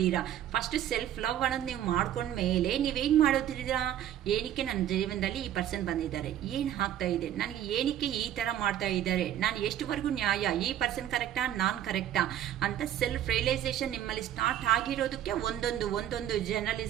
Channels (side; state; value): left; quieter; 11.4 dB